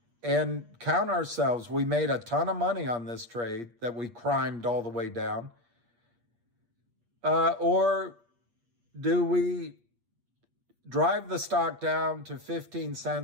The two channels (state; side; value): late; left; 8.5 ms